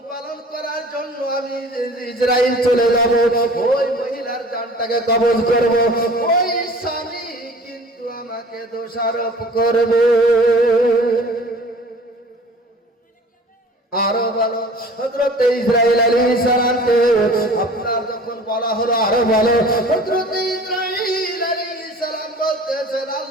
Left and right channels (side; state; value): both; normal; correlation 0.45